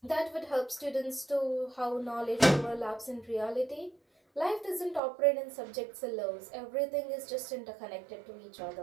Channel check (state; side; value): drops out; left; at 5.0 s